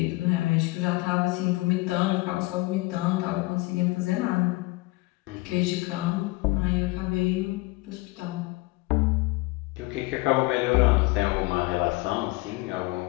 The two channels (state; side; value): quieter; right; 22.6 dB